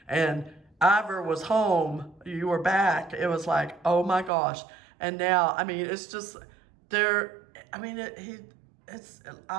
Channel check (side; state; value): left; drops out; at 4.3 s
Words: and Ivor was home, you were back, it was like, oh my gosh. And now, I mean, it's just, I mean,